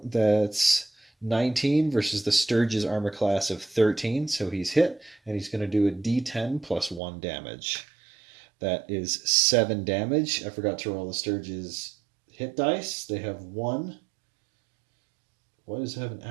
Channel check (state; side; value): drops out; left; at 7.0 s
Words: 19 versus the Sturge's armor class of 13, so he's hit, and he's going to do a d10 plus 1 damage. That is 7 damage. I forgot to roll the Sturge's hit dice. They have 1. Why does it have an